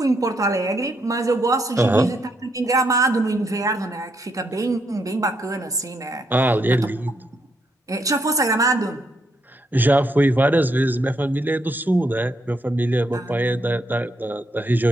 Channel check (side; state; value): both; normal; correlation 0.77